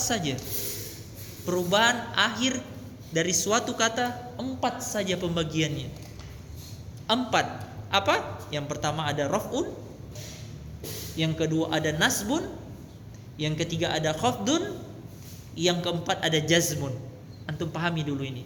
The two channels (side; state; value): both; identical; correlation 1.00